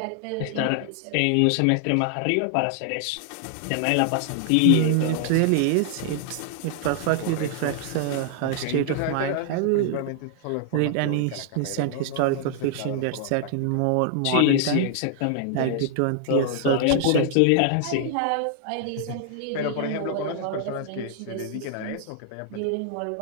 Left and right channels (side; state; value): both; different; correlation 0.00